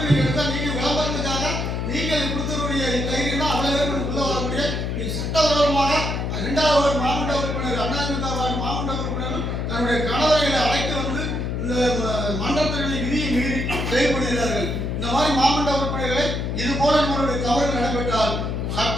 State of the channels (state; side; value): noise; left; hum, 2 dB below the sound